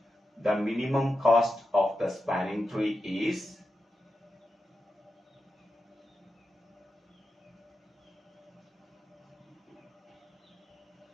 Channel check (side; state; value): both; normal; correlation 0.89